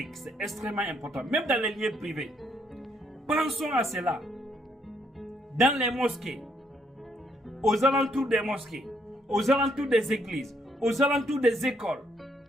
C'est extrêmement important, même dans les lieux privés. Pensons à cela. Dans les mosquées, aux alentours des mosquées, aux alentours des églises, aux alentours des écoles,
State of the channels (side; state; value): both; normal; correlation 0.71